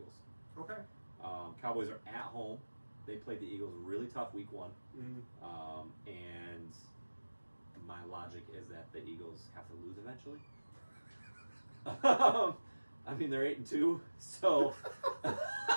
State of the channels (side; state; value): both; inverted; correlation -1.00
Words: Okay. Cowboys are at home. They played the Eagles really tough week 1. And my logic is that the Eagles have to lose eventually. They're 8-2, so